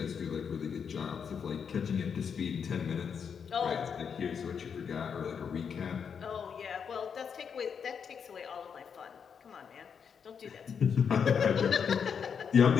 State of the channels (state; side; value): quieter; right; 6.8 dB